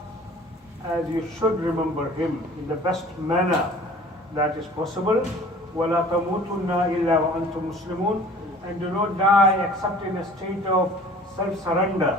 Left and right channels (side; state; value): both; normal; correlation 0.47